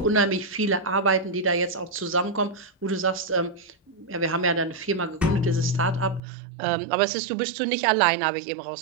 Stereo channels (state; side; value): drops out; left; at 6.2 s